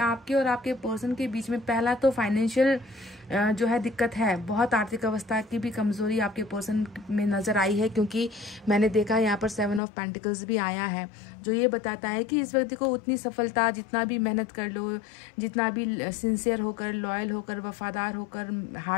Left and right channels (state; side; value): drops out; right; at 9.8 s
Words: और आपके पर्सन के बीच में पहला तो फाइनेंशियल जो है दिक्कत है। बहुत आर्थिक अवस्था की भी कमजोरी आपके पर्सन में नज़र आई है, क्योंकि मैंने देखा यहाँ पर 7 ऑफ पेंटिकल्स भी आया है, जो ये बताता है कि इस व्यक्ति को उतनी सफलता, जितना भी मेहनत कर लो, जितना भी सिंसियर होकर, लॉयल होकर, वफादार होकर,